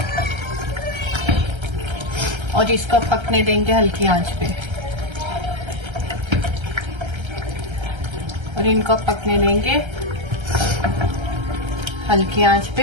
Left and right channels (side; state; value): left; late; 1.3 ms